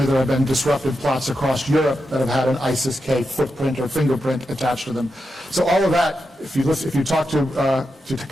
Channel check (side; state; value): both; normal; correlation 0.88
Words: there have been disrupted plots across Europe that have had an ISIS-K footprint or fingerprint attached to them. So all of that, if you talk to